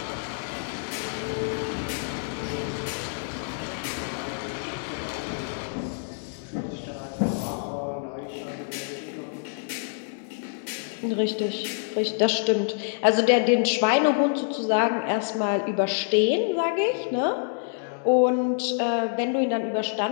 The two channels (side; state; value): right; silent; digital silence